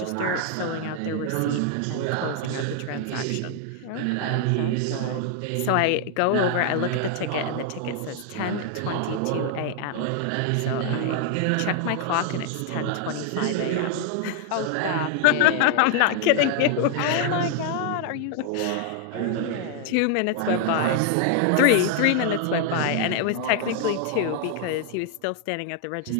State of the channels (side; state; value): both; different; correlation 0.00